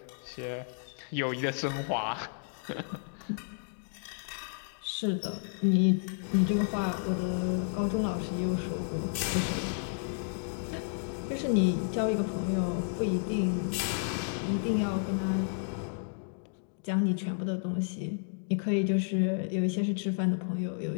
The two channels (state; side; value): silent; right; digital silence